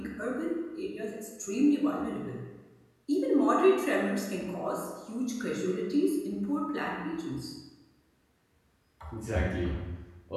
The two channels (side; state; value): both; identical; correlation 1.00